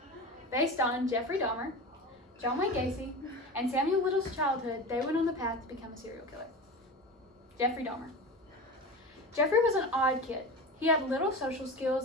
Based on Jefree Dahmer, Wayn Gacy, and Samuel Little's childhood, they went on the path to become a serial killer. Jefree Dahmer. Jefree was an odd kid. He had little social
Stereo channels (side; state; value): both; normal; correlation 0.29